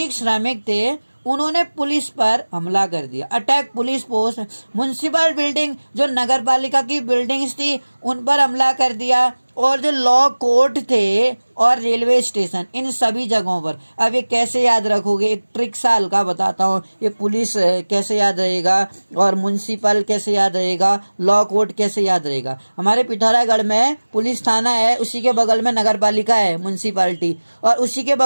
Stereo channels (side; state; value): both; inverted; correlation -1.00